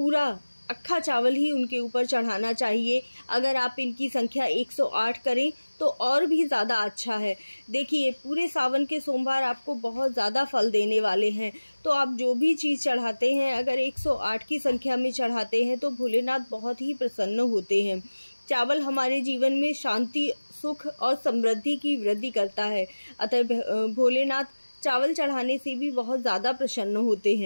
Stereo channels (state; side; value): inverted; both; correlation -1.00